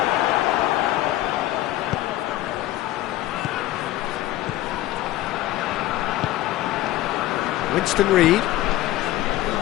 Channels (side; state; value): right; quieter; 15.3 dB